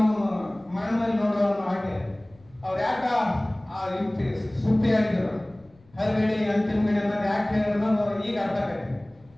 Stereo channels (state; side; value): noise; left; rumble, 29 dB below the sound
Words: ಮರಣದಲ್ಲಿ ನೋಡುವ ಹಾಗೆ ಅವ್ರು ಯಾಕ ಆ ಯುಕ್ತಿ ಸೂಕ್ತಿಯಾಗಿದ್ರು, ಹರಿಗಡಿ ಅಂತಿಮ ಗಡಿ ಅನ್ನೋದು ಯಾಕೆ ಹೇಳಿದ್ರು ಅನ್ನೋದು ಈಗ ಅರ್ಥ ಆಗಿದೆ.